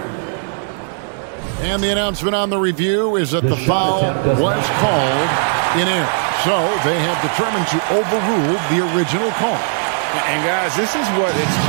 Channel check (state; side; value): silent; left; 66 dB below the other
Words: And the announcement on the review is that the foul was called in error. So they have determined to overrule the original call. And guys, this is what it's